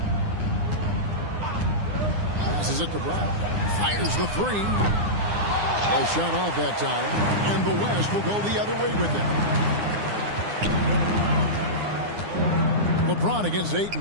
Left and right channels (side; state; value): left; late; 9.8 ms